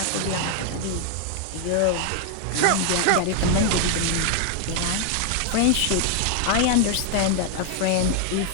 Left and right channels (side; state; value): both; different; correlation 0.00